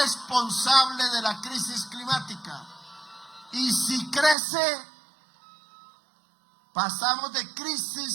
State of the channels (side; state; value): left; drops out; at 4.4 s